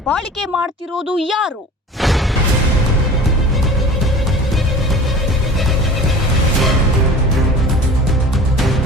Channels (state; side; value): normal; both; correlation 0.41